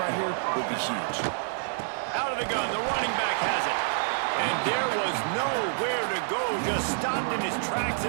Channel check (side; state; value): left; silent; digital silence